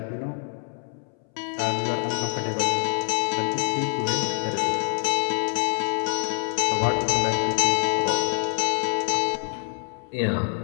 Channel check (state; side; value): silent; right; 61 dB below the other